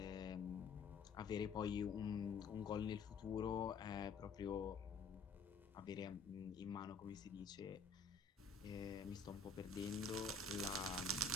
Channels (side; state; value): right; quieter; 4.4 dB